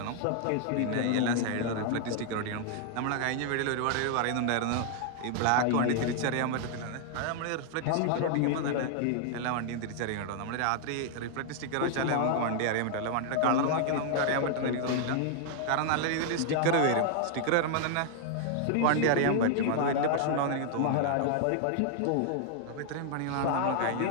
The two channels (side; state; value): both; different; correlation 0.00